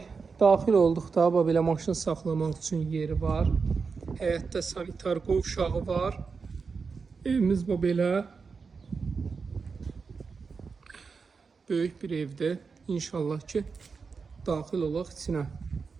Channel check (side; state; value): left; quieter; 5.1 dB